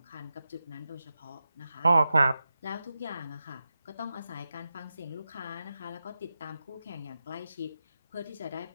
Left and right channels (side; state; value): both; inverted; correlation -0.91